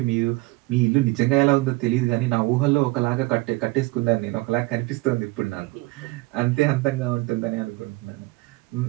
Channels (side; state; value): left; quieter; 22.7 dB